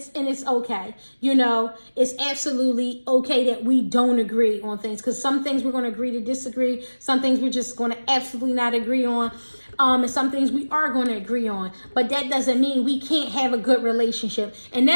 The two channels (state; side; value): inverted; both; correlation -1.00